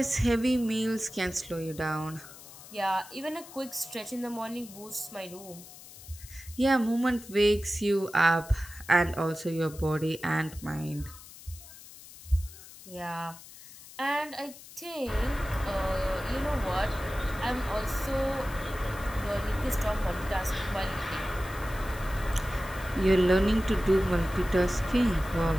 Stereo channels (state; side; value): noise; left; hiss, 18 dB below the sound